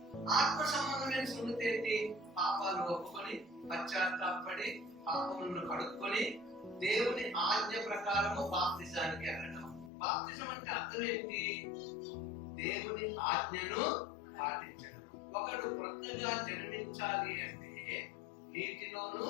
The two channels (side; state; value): right; drops out; at 9.9 s